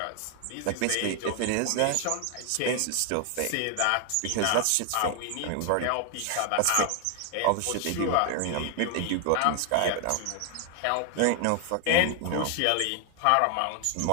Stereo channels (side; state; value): both; different; correlation 0.00